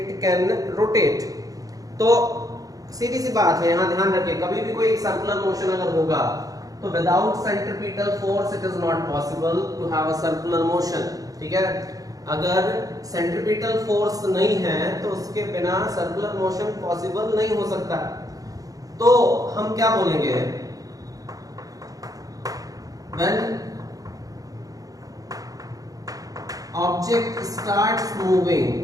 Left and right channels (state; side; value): late; left; 0.17 ms